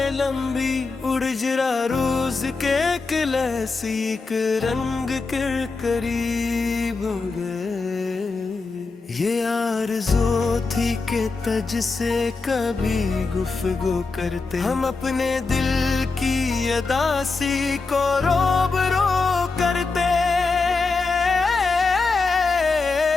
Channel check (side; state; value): right; quieter; 4.1 dB